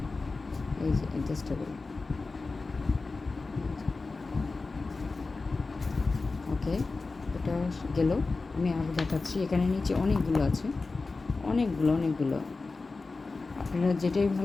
এই যে অ্যাডজাস্টেবল। ওকে, এটা গেল। আমি আরও দেখাচ্ছি, এখানে নিচে অনেকগুলো আছে, অনেকগুলো। আপনারা যেটাই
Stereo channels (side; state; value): right; quieter; 3.8 dB